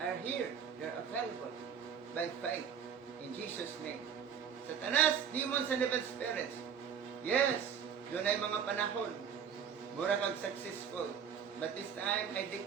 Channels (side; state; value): left; quieter; 7.5 dB